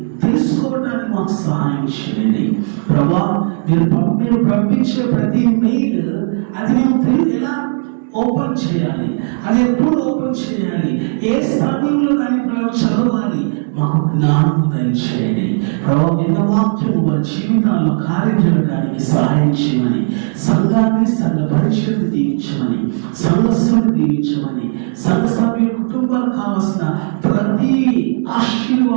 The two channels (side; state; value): left; silent; digital silence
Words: తెలుసుకోవడానికి మాకు సహాయం చేయండి ప్రభా. మీరు పంపించే ప్రతి మెయిల్ అది మేము ఎలా ఓపెన్ చేయాలి, అది ఎప్పుడు ఓపెన్ చేయాలి, ఏ సమయంలో దాన్ని చదవాలి, మాకు జ్ఞానం దయచేయండి ప్రభావ. విన్న వాక్యము వారి జీవితాల్లో కార్యం చేయడానికి సహాయం చేయమని, సంఘాన్ని, సంఘ పరిచయాన్ని దీవించమని, సంఘస్సును దీవించమని, సంఘ సభ్యుల కుటుంబాలకు కావలసిన ప్రతి